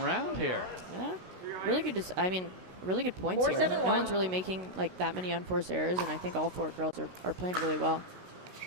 here. Yeah, really good. I mean, really good points here. 4-7-1. No one's really making like that many unforced errors, and I think all 4 girls are playing really well.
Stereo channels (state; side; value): late; left; 16 ms